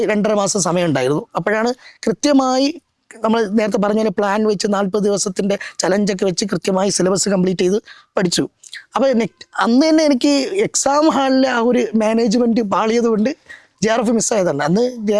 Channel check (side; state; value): both; identical; correlation 1.00